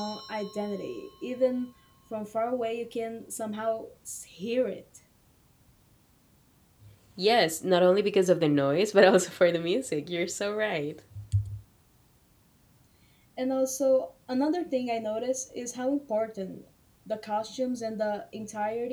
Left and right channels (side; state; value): both; identical; correlation 1.00